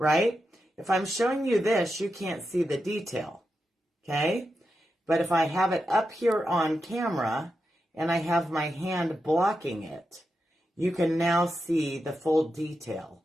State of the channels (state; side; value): normal; both; correlation 0.88